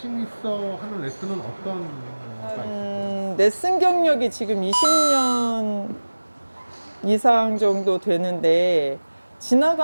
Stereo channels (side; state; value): both; inverted; correlation -1.00